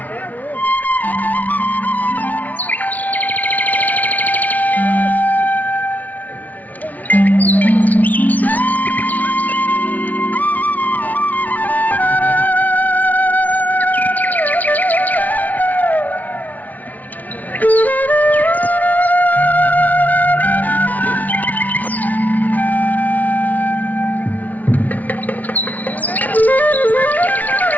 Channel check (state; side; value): late; right; 0.076 ms